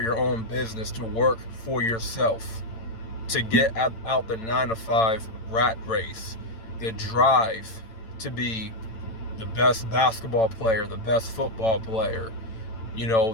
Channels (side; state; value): right; late; 8.9 ms